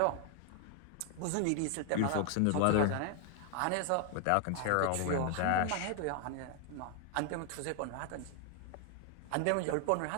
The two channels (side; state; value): both; different; correlation 0.00